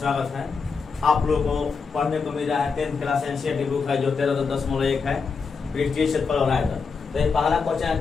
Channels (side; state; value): right; quieter; 5.2 dB